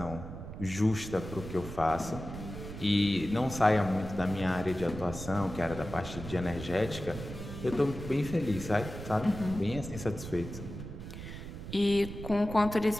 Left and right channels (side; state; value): right; noise; rumble, 10 dB below the sound